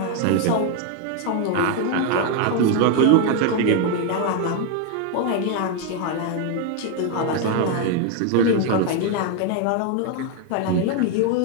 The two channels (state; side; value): different; both; correlation 0.01